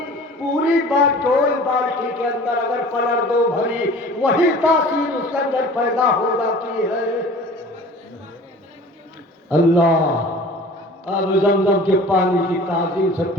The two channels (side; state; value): both; normal; correlation 0.44